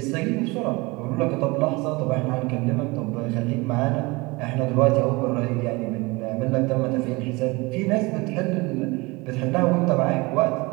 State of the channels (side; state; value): left; quieter; 24.5 dB